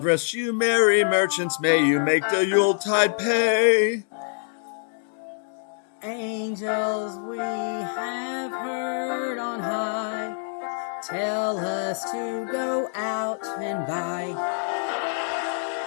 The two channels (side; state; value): right; silent; digital silence